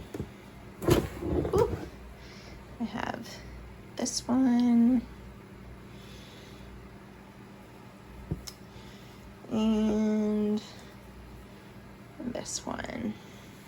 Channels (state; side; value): identical; both; correlation 1.00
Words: have this one and this one.